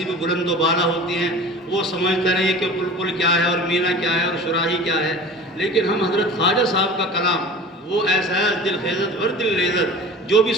بھی بلند و بالا ہوتی ہیں، وہ سمجھتے نہیں کہ بلبل کیا ہے اور مینا کیا ہے اور شراحی کیا ہے، لیکن ہم حضرت خواجہ صاحب کا کلام وہ ایسا ہے دل خیزت ور دل لیزت، جو بھی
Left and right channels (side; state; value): both; normal; correlation 0.39